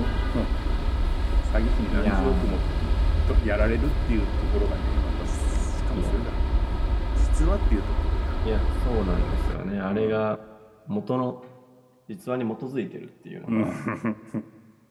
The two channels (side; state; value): both; identical; correlation 1.00